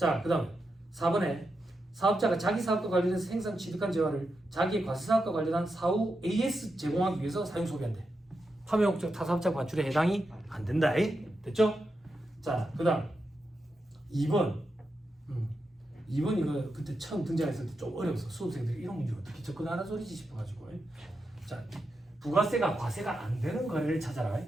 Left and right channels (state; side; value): normal; both; correlation 0.87